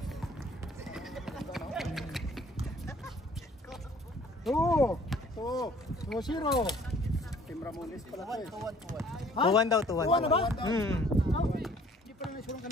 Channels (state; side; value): normal; both; correlation 0.56